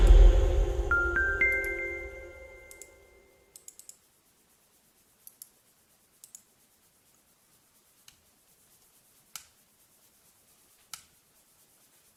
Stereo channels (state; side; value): identical; both; correlation 1.00